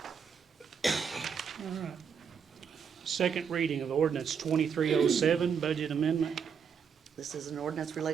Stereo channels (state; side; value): quieter; left; 6.8 dB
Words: All right. Second reading of ordinance 2307, budget amendment. This is an ordinance